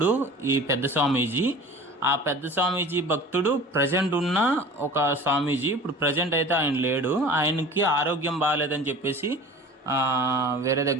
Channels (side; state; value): both; normal; correlation 0.41